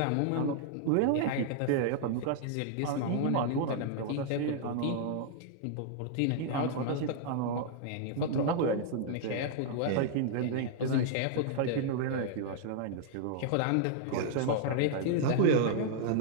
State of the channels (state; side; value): different; both; correlation -0.01